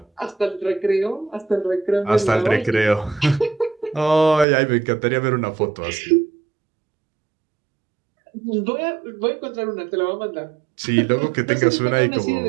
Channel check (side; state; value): left; drops out; at 4.5 s